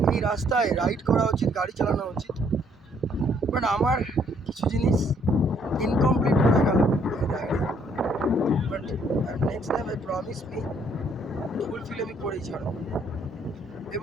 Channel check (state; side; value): normal; both; correlation 0.66